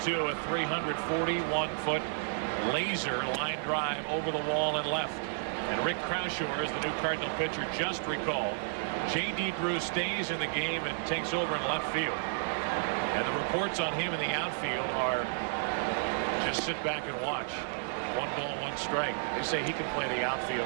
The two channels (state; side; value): silent; left; digital silence